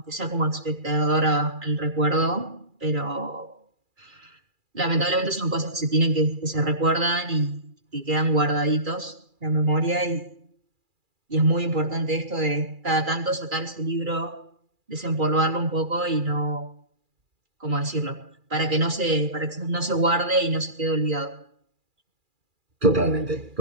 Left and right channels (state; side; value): late; left; 2.4 ms